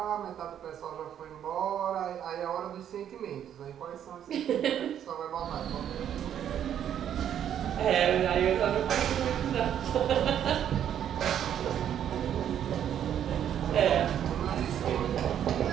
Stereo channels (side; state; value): left; quieter; 9.8 dB